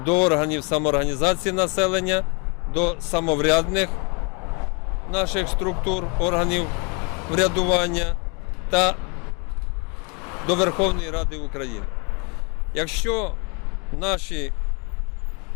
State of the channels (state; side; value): quieter; right; 33.7 dB